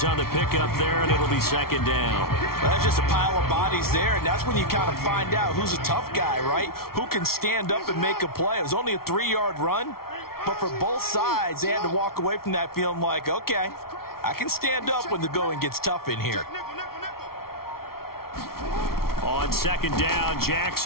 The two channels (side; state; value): right; late; 0.94 ms